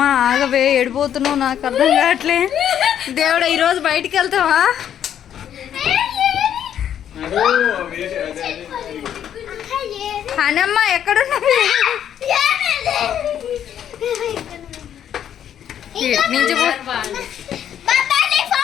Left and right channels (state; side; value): quieter; right; 9.8 dB